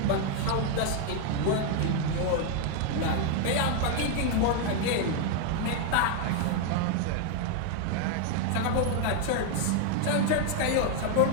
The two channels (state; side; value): different; both; correlation 0.01